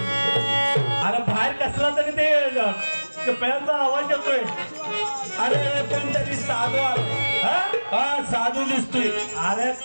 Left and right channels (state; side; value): inverted; both; correlation -1.00